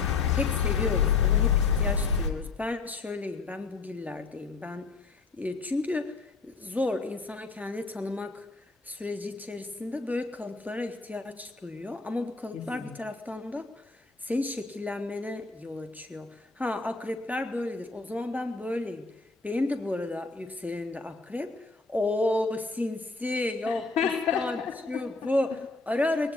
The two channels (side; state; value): right; quieter; 4.0 dB